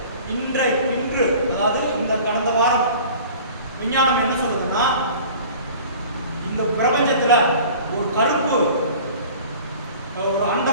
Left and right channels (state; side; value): inverted; both; correlation -0.44